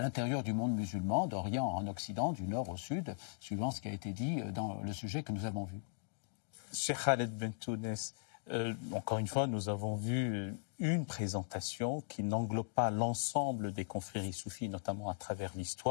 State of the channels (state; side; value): silent; right; digital silence